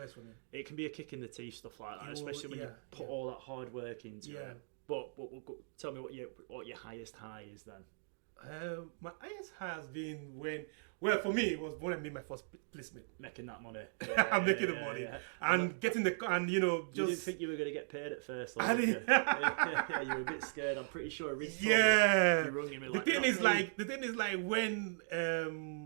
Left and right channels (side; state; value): left; silent; digital silence